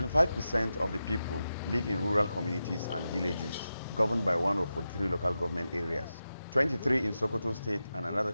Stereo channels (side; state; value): both; inverted; correlation -0.90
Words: of the people live in rural communities and villages, governed by one of 43 local government areas, 23 in Sokoto State and another